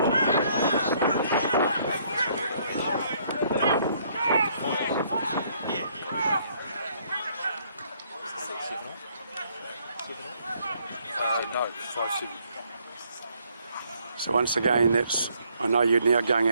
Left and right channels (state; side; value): inverted; both; correlation -0.67